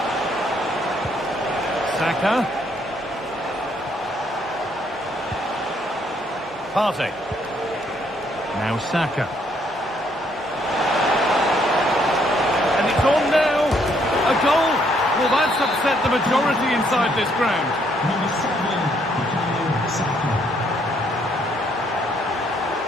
Saka. Partey. Now Saka. And it's on now. A goal. Well, that's upset the majority inside this ground. Number 7, Bukayo Saka.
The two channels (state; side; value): normal; both; correlation 0.69